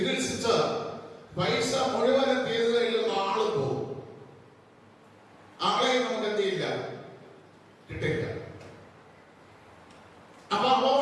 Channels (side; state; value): both; identical; correlation 1.00